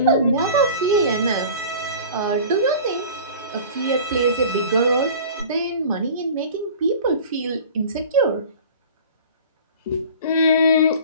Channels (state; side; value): inverted; both; correlation -0.41